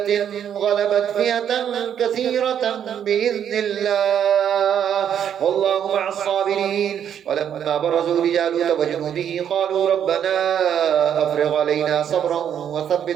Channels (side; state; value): left; quieter; 9.1 dB